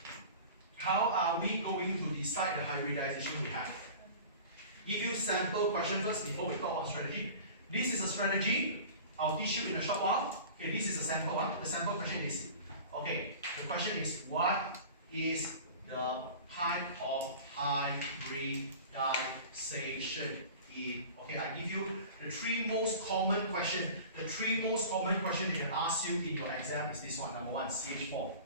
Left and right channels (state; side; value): inverted; both; correlation -0.39